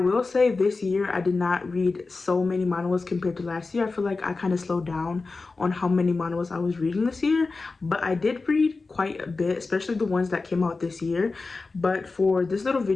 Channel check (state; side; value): quieter; right; 3.9 dB